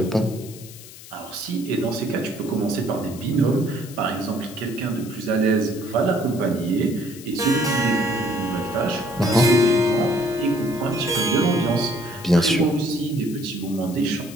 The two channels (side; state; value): left; noise; hiss, 17 dB below the sound